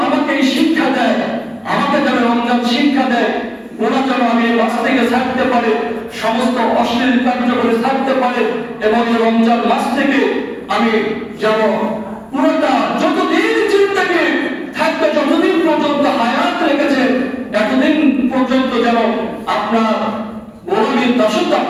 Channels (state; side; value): identical; both; correlation 1.00